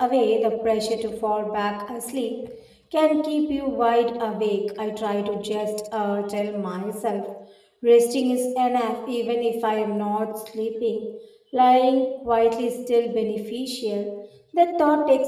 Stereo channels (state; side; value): identical; both; correlation 1.00